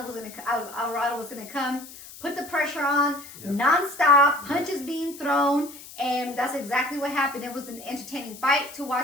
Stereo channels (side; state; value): left; noise; hiss, 16 dB below the sound